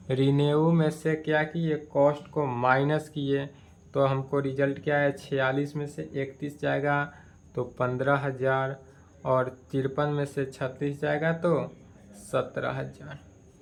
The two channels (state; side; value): identical; both; correlation 1.00